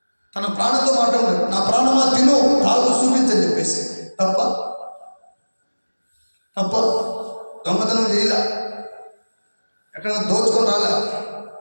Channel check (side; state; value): both; inverted; correlation -1.00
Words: తన ప్రాణంతో మాట్లాడు. నా ప్రాణమా తిను, తాగు, చూపించని చెప్పేసి. తప్ప దొంగతనం చేయలే, ఎక్కడైనా దోచుకొని రాలే,